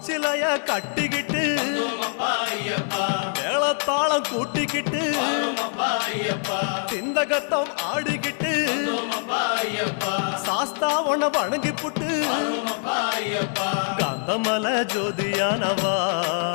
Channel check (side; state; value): right; silent; 59 dB below the other